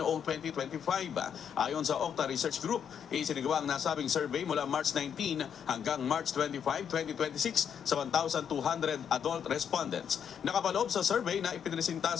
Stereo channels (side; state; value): right; quieter; 8.0 dB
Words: 2025. Ayon sa Okta Research Group, isinagawa ang nasabing survey mula March 19 hanggang March 25, 2026 sa 1,200 adult respondents. Nakapaloob sa survey na ipinresinta